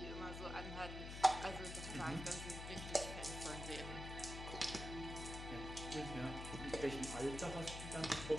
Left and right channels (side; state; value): left; noise; hum, 7 dB below the sound